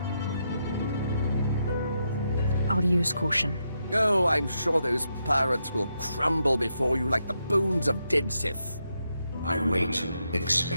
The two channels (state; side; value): inverted; both; correlation -0.82